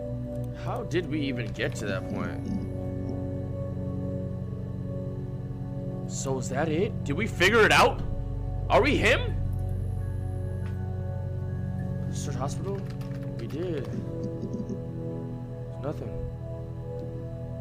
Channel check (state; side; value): identical; both; correlation 1.00